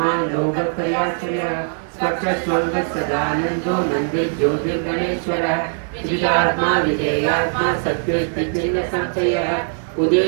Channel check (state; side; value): silent; left; 57 dB below the other